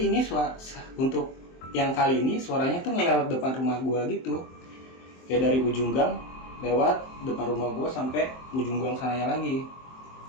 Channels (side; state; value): right; late; 23 ms